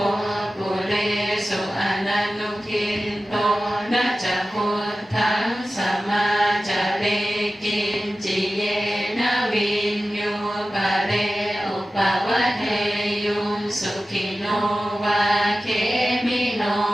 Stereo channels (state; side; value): normal; both; correlation 0.95